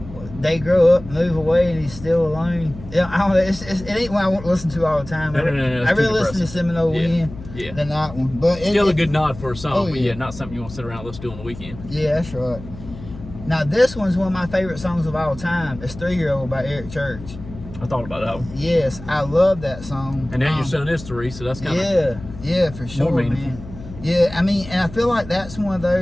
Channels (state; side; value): noise; left; hum, 15 dB below the sound